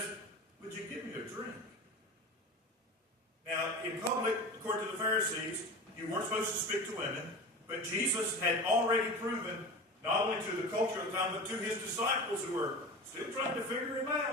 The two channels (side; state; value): both; normal; correlation 0.31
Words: would you give me a drink? Now, in public, according to the Pharisees, you weren't supposed to speak to women, but Jesus had already proven, not only to the culture of the time, but to his disciples who were still trying to figure him